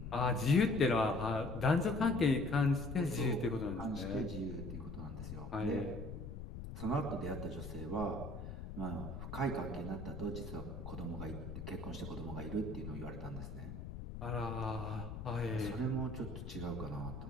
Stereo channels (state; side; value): noise; left; rumble, 8 dB below the sound